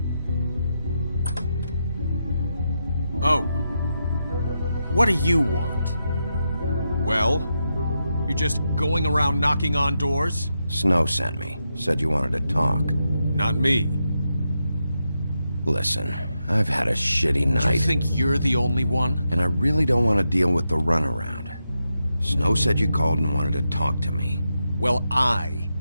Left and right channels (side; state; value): both; inverted; correlation -0.86